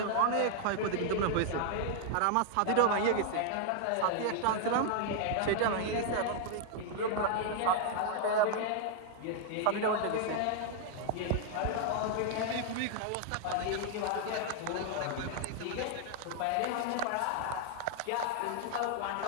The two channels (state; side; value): different; both; correlation -0.01